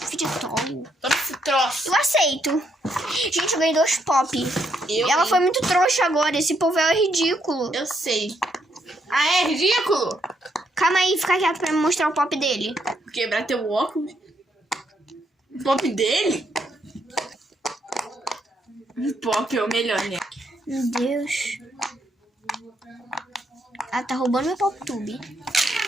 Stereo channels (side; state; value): both; normal; correlation 0.75